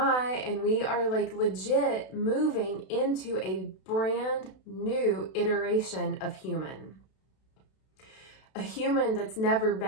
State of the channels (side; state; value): right; late; 32 ms